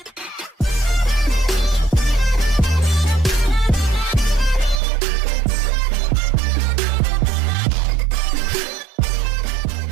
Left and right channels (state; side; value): drops out; left; at 4.8 s